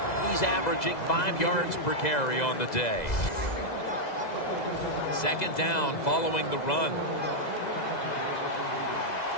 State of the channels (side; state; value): right; late; 2.0 ms